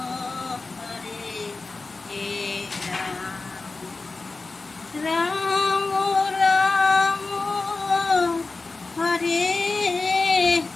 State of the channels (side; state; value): right; quieter; 3.7 dB